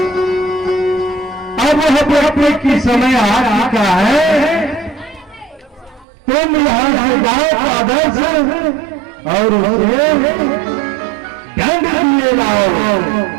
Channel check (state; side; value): drops out; left; at 6.1 s